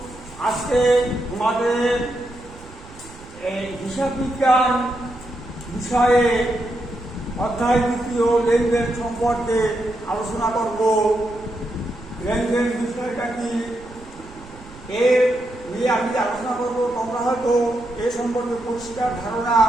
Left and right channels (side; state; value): right; noise; rumble, 20 dB below the sound